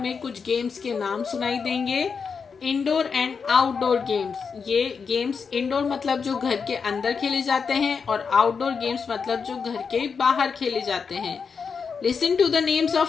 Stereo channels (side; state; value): right; quieter; 5.7 dB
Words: कुछ गेम्स के नाम सुनाई देंगे। इंडोर एंड आउटडोर गेम्स, ये गेम्स इंडोर मतलब जो घर के अंदर खेले जाते हैं और आउटडोर गेम्स मतलब जो घर के बाहर खेले जाते हैं। Listen to the names